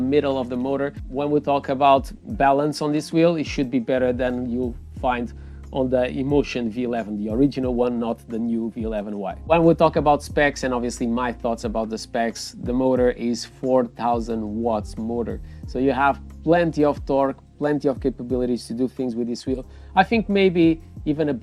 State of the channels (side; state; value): both; identical; correlation 1.00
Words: of the motor. When we talk about balance on this wheel, it should be better than you'll find on the Inmotion V11, the original one, not the new V11Y. When we talk about specs, and obviously my thoughts about the specs, the motor is 4,000 watts motor. So you have plenty of torque, plenty of capabilities to do things with this wheel. I think maybe even a